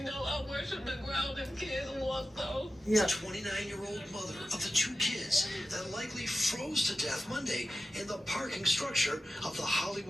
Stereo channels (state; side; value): normal; both; correlation 0.93